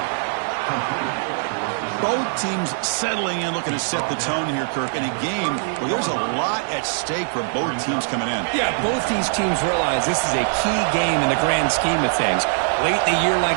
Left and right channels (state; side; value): silent; left; 64 dB below the other